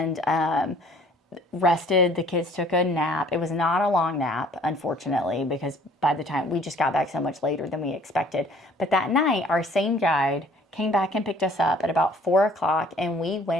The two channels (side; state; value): both; normal; correlation 0.56